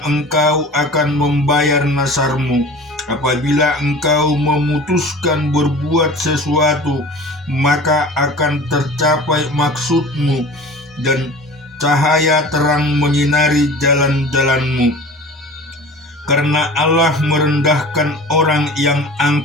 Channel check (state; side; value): normal; both; correlation 0.40